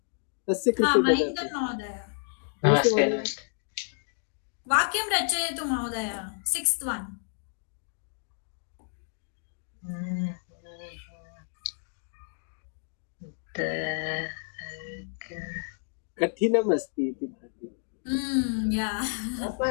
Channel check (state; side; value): silent; right; digital silence